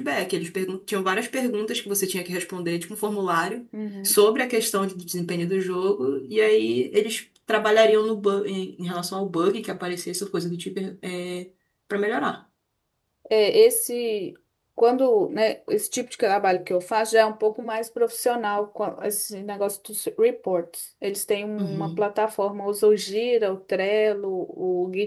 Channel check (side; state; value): both; identical; correlation 1.00